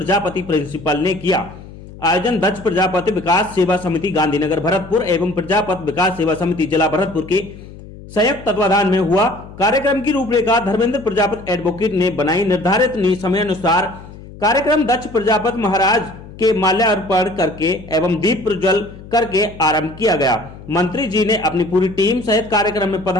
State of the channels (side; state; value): left; noise; hum, 17 dB below the sound